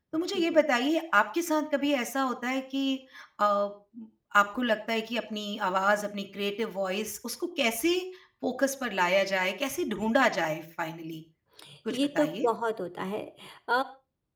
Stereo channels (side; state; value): both; identical; correlation 1.00